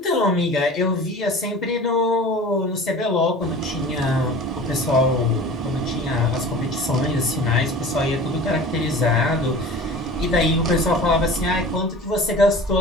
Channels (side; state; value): both; normal; correlation 0.39